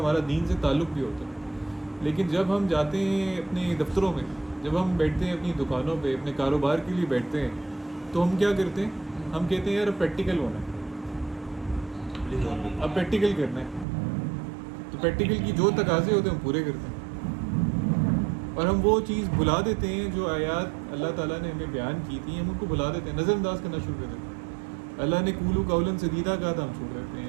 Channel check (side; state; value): left; drops out; at 13.9 s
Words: دین سے تعلق بھی ہوتا ہے. لیکن جب ہم جاتے ہیں اپنے دفتروں میں, جب ہم بیٹھتے ہیں اپنی دکانوں پہ, اپنے کاروبار کے لیے بیٹھتے ہیں, تو ہم کیا کرتے ہیں, ہم کہتے ہیں یار اب پریکٹیکل ہونا ہے, اب پریکٹیکل کرنا ہے. تو پریکٹیکل کی جو تقاضے ہوتے ہیں ہم پورے کرتے ہیں, اور ہم وہ چیز بھلا دیتے ہیں جو آیات اللہ تعالیٰ نے ہمیں بیان کی تھی, ہم ان کو بھلا دیتے ہیں, نظر انداز کرنا شروع کر دیتے ہیں. اللہ نے قولوا قولا سدیدا کہا تھا, ہم چھوڑ دیتے